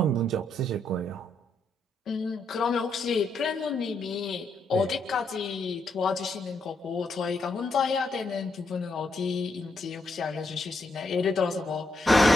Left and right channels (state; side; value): normal; both; correlation 0.79